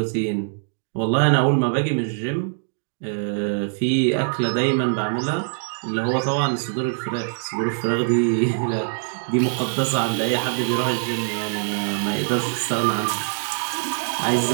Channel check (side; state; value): left; silent; digital silence